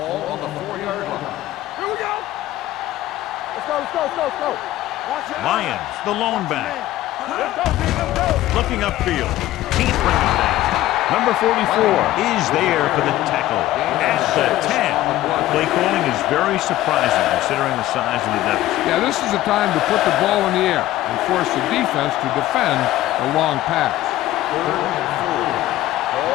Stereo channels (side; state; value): right; quieter; 15.1 dB